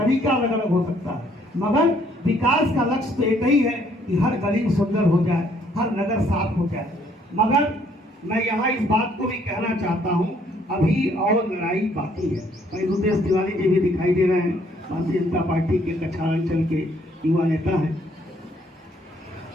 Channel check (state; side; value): normal; both; correlation 0.65